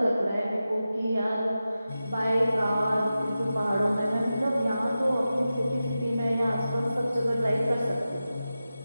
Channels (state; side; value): inverted; both; correlation -0.93